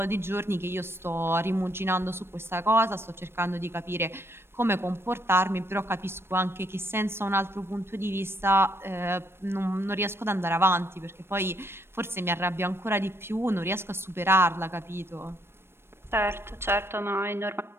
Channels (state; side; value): late; left; 0.12 ms